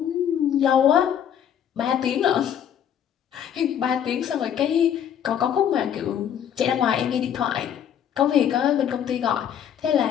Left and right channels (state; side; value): quieter; right; 9.2 dB